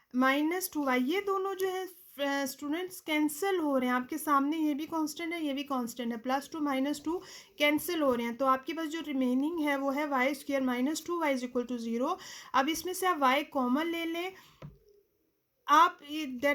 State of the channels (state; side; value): identical; both; correlation 1.00